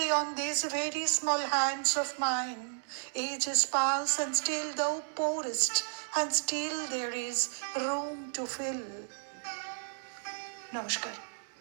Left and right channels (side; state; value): left; silent; digital silence